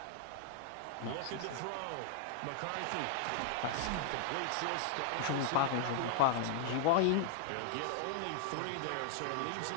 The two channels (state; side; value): different; both; correlation -0.01